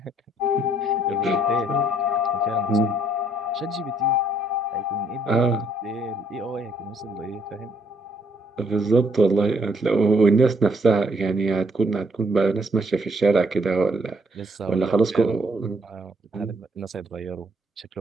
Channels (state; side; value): normal; both; correlation 0.68